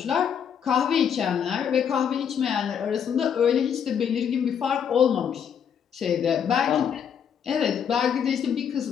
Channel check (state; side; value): quieter; right; 8.0 dB